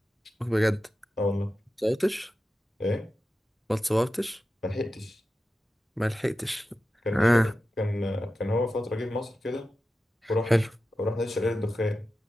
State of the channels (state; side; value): normal; both; correlation 0.92